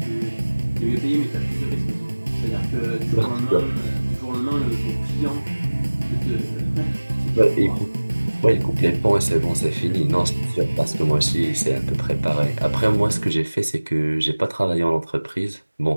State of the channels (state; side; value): inverted; both; correlation -1.00